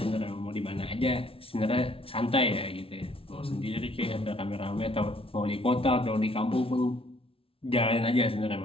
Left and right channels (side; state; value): right; late; 0.26 ms